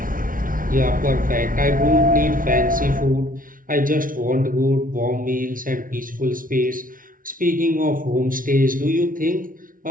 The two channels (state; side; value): late; left; 0.39 ms